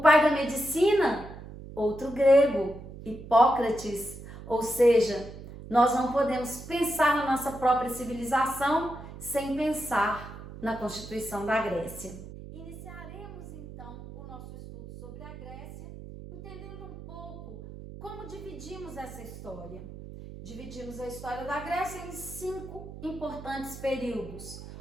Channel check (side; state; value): right; noise; hum, 13 dB below the sound